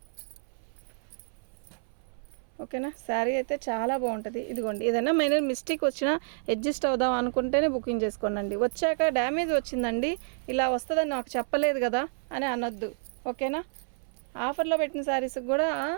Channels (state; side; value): silent; left; 58 dB below the other